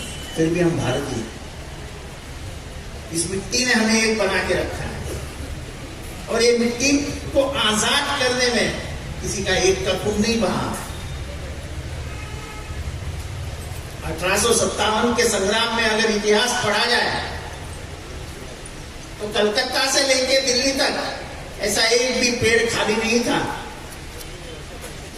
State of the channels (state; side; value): identical; both; correlation 1.00